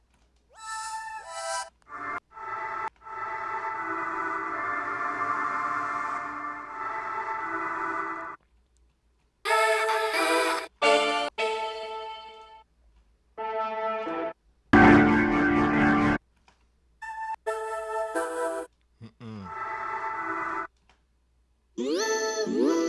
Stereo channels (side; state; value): both; identical; correlation 1.00